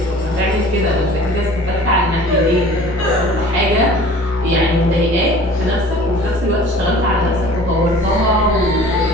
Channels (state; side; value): normal; both; correlation 0.45